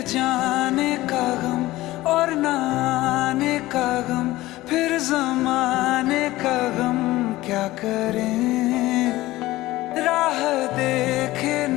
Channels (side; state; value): right; quieter; 17.6 dB